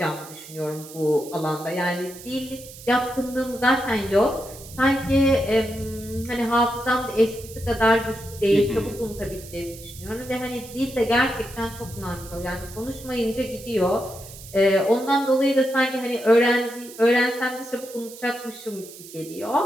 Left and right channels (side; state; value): right; noise; hiss, 16 dB below the sound